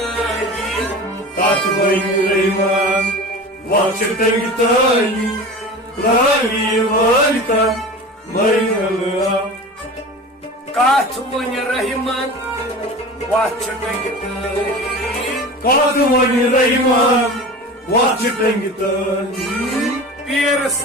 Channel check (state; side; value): normal; both; correlation 0.34